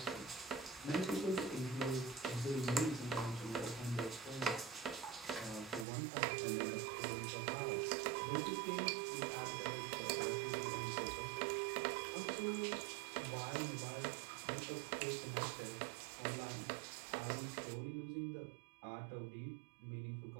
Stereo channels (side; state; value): left; drops out; at 5.9 s